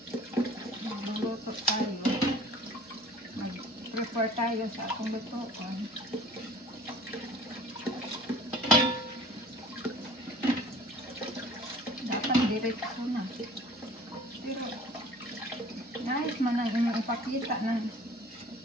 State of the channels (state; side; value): normal; both; correlation 0.47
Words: magluluto tayo, mag-prepare tayo sa atong lutuan. Dapat diretso na. Pero nice man ang inyong ipakita ng